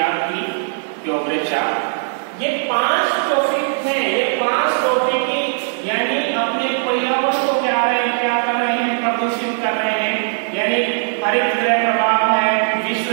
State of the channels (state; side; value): silent; left; digital silence